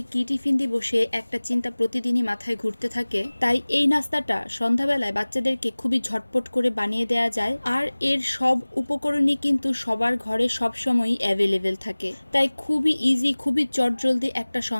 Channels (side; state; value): both; inverted; correlation -1.00